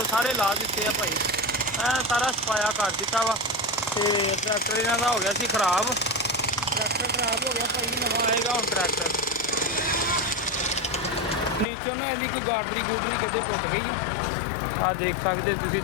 ਸਾਰੇ ਲਾ ਦਿੱਤੇ ਆ ਭਾਈ, ਐ ਸਾਰਾ ਸਫਾਇਆ ਕਰ ਦਿੱਤਾ ਵਾ। ਤੇ ਟਰੈਕਟਰ ਇਹਨਾਂ ਦਾ ਹੋ ਗਿਆ ਸੀ ਖਰਾਬ। ਟਰੈਕਟਰ ਖਰਾਬ ਹੋ ਗਿਆ ਭਾਈ, ਨਵਾਂ ਆਏਗਾ ਹੁਣ ਟਰੈਕਟਰ। ਨੀਚੋਂ ਨਾ ਇਹਦੀ ਕੋਈ ਗਾਡਰੀ ਗੂਡਰੀ ਕਿਤੇ ਟੁੱਟ ਗਈ। ਆ ਦੇਖ ਸਕਦੇ ਤੁਸੀਂ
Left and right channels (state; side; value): drops out; right; at 11.7 s